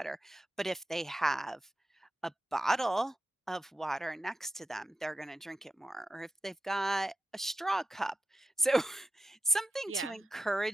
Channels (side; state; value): both; normal; correlation 0.89